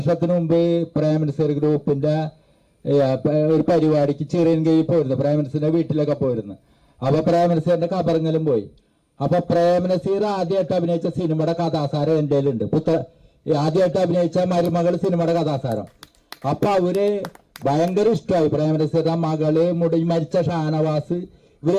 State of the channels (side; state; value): both; identical; correlation 1.00